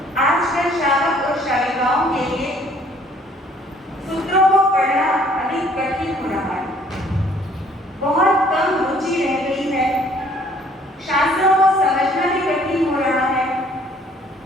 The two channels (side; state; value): both; normal; correlation 0.59